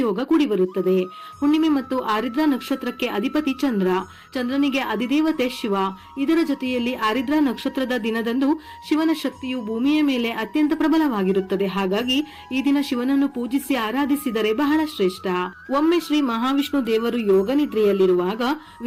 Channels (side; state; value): both; identical; correlation 1.00